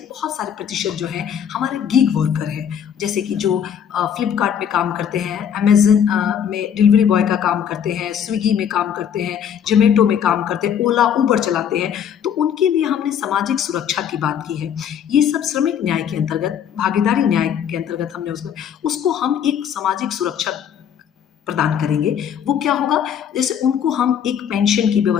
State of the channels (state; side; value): quieter; right; 8.6 dB